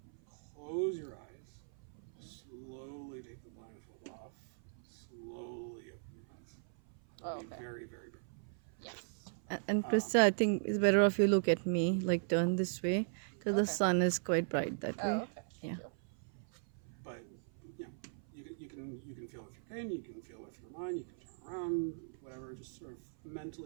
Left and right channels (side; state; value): left; silent; 52 dB below the other